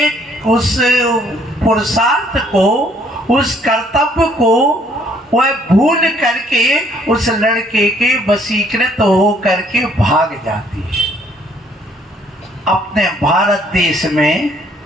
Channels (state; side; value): normal; both; correlation 0.64